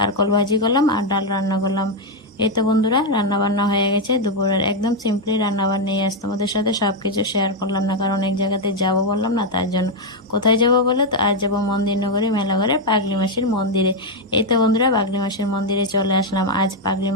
ভাজি করলাম আর ডাল রান্না করলাম। এই তো বন্ধুরা, রান্না বান্না হয়ে গেছে দুপুরের। একদম সিম্পলি রান্না বান্নাই। আজ তোমাদের সাথে সব কিছু শেয়ার করলাম না, কারণ এক জায়গাতে যাব বললাম না, তার জন্য। কোথায় যাব বলে তো, আজ যাবো মন্দির নগরী মেলাঘরে পাগলি মাসির মন্দিরে। এই তো বন্ধুরা, পাগলি মাসির মন্দিরে চলে আসলাম। আজ পাগলি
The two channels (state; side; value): normal; both; correlation 0.02